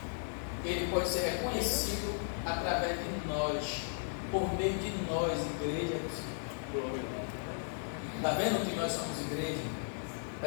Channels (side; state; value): right; silent; digital silence